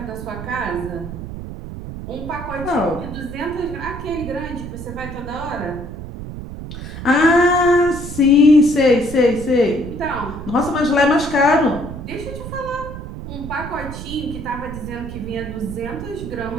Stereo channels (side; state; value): right; noise; rumble, 9 dB below the sound